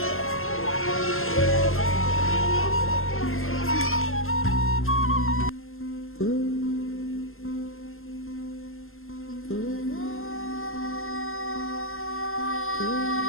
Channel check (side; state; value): right; late; 0.61 ms